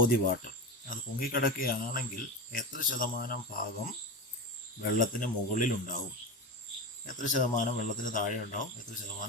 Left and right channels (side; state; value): both; normal; correlation 0.22